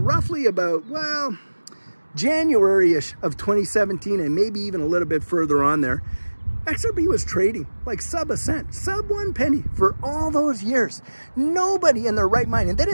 about, well, January-ish of 2017, and maybe even a little bit further on there, XRP was trading like sub a cent, sub 1 penny for all those years. Nobody in their right mind. And then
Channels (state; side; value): inverted; both; correlation -1.00